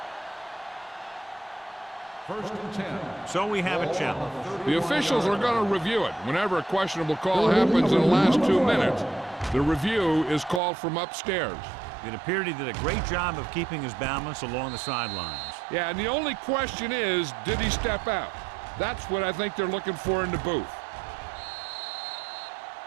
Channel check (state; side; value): drops out; left; at 10.6 s